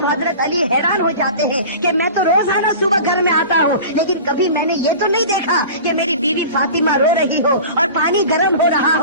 حضرت علی حیران ہو جاتے ہیں کہ میں تو روزانہ صبح گھر میں آتا ہوں, لیکن کبھی میں نے یہ تو نہیں دیکھا کہ میری بیوی فاطمہ رو رہی ہو اور پانی گرم ہو رہا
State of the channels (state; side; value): inverted; both; correlation -0.37